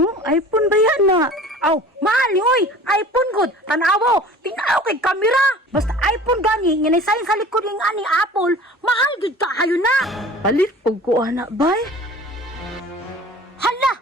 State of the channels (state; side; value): normal; both; correlation 0.43